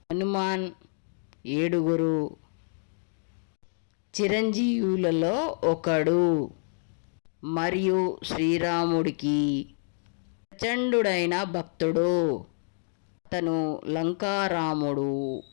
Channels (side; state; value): right; silent; digital silence